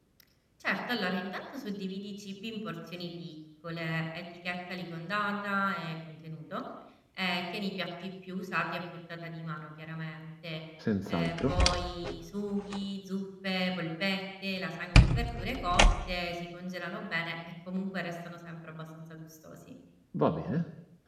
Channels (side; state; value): both; identical; correlation 1.00